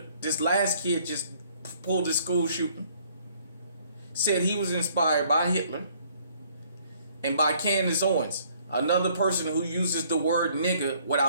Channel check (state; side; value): inverted; both; correlation -0.61